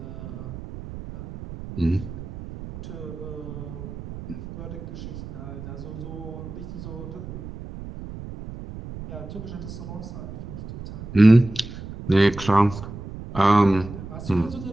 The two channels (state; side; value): noise; right; rumble, 11 dB below the sound